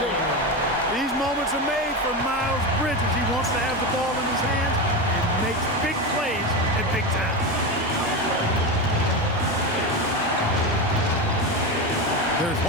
These moments are made for Miles Bridges. He wants to have the ball in his hands and makes big plays at big time. There's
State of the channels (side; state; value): both; normal; correlation 0.17